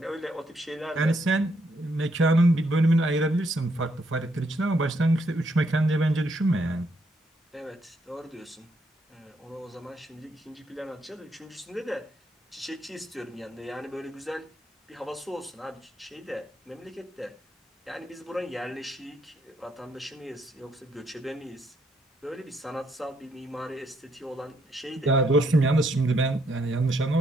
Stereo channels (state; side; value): normal; both; correlation 0.74